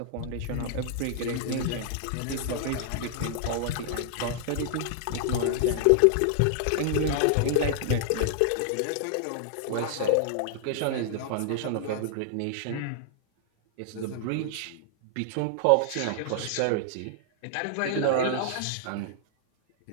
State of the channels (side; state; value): both; different; correlation -0.01